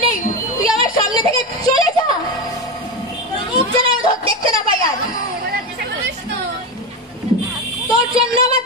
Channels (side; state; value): both; normal; correlation 0.16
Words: নেই। তুই আমার সামনে থেকে চলে যা। মুখ যেন আমি দেখতে না পাই আর। তোর জন্য আমার